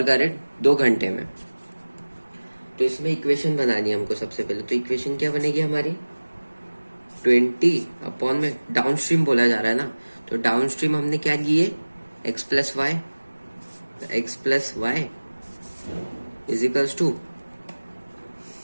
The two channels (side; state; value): both; inverted; correlation -1.00